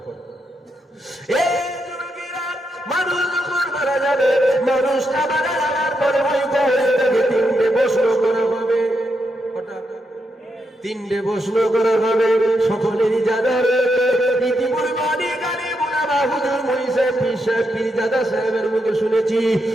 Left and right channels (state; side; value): normal; both; correlation 0.82